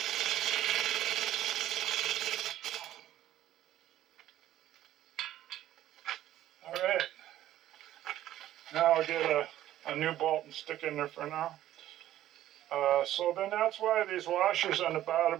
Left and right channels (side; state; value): left; quieter; 13.1 dB